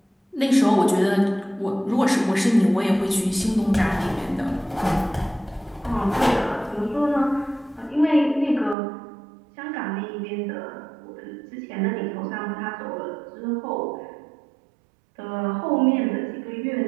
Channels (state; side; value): drops out; left; at 8.8 s